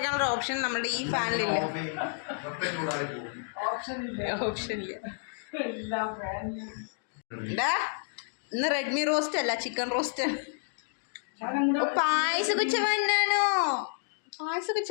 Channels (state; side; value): silent; right; digital silence